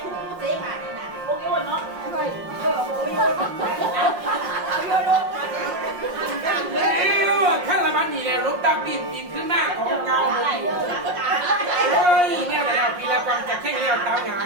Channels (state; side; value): late; left; 5.6 ms